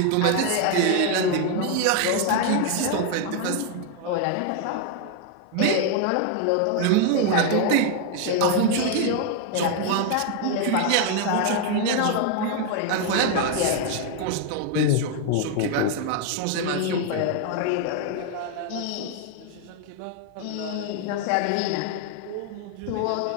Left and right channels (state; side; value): different; both; correlation 0.00